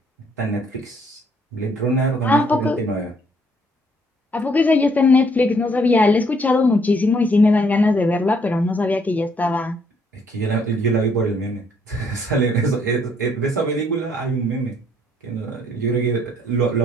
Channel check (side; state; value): both; normal; correlation 0.66